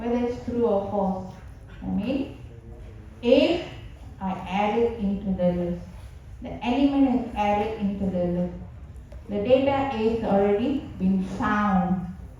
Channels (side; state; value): both; identical; correlation 1.00